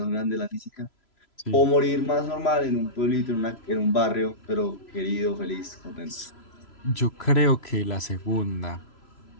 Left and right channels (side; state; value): right; late; 3.0 ms